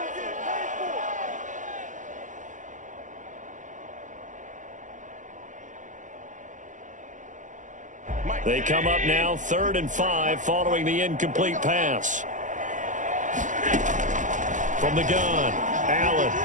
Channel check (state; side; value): late; left; 0.37 ms